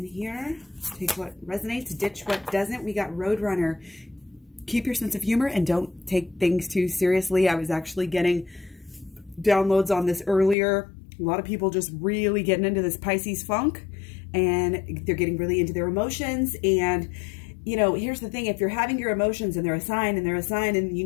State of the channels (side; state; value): right; drops out; at 10.6 s